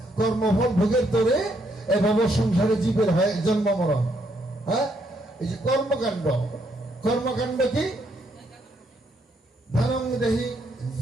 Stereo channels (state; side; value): normal; both; correlation 0.73